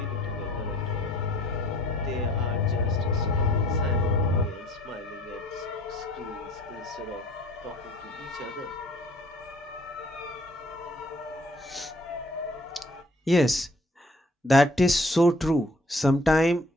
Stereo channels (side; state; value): both; normal; correlation 0.57